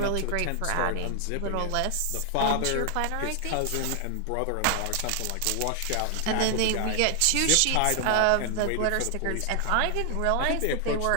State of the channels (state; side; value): different; both; correlation 0.00